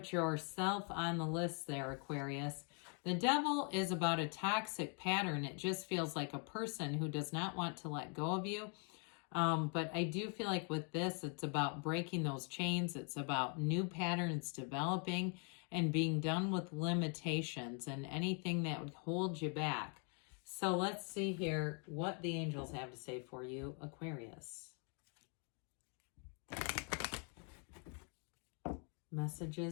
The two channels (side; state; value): right; quieter; 39.0 dB